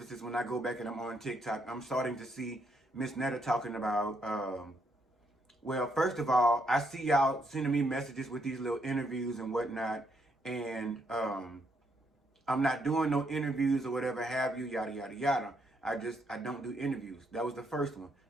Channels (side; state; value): both; normal; correlation 0.75